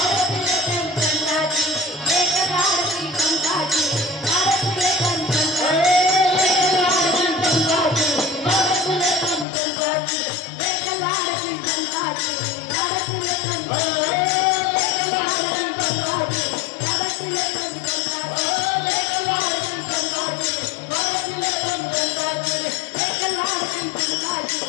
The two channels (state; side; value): drops out; right; at 9.5 s